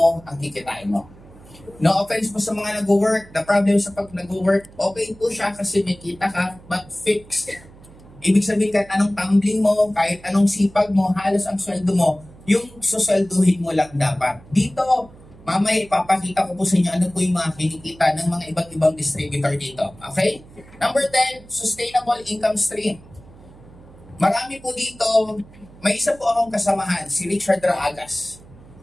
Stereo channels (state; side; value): noise; right; hum, 22 dB below the sound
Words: ang kikitain mo. No offense po sa mga nag-work. The problem sa pag nag-work, okay po siya kasi may kita ka, but fixed. Ibig sabihin kahit anong tumbling mo, kahit anong sipag mo, halos ang sweldo mo, yung suswelduhin mo lang dapat. Dito, mamaya ipapakita ko po sa inyo ano po yung mga kinikita ng mga iba't ibang distributor dito. Okay? Number 10, sustainable income stream. Marami po dito, may isa po akong kasamahan, si Richard Raagas.